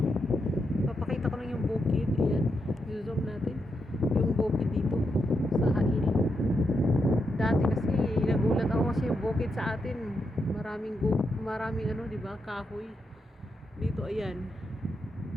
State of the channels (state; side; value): normal; both; correlation 0.83